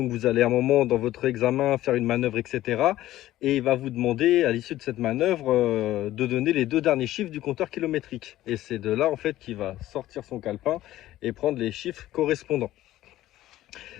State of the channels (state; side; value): quieter; right; 14.7 dB